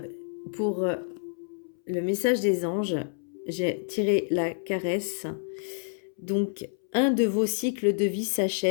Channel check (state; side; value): silent; right; 59 dB below the other